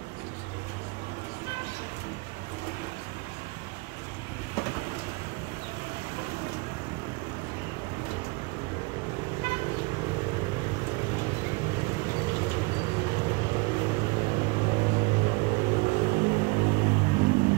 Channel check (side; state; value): left; quieter; 27.6 dB